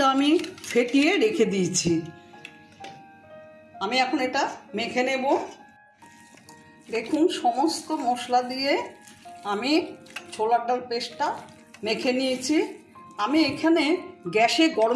আমি ফেটিয়ে রেখে দিয়েছি। আমি এখন এটা মেখে নেব। দেখুন, সমস্ত মশলা দিয়ে আমি ছোলার ডাল পেস্টটা মেখে নিয়েছি। আমি এখানে গ্যাসে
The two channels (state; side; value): identical; both; correlation 1.00